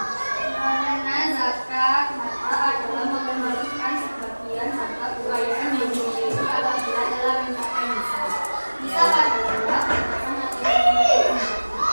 Karena zakat harta adalah mengembalikan sebagian harta kekayaan yang dimiliki apabila dalam mencapai nisab. Nisab adalah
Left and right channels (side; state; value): both; inverted; correlation -1.00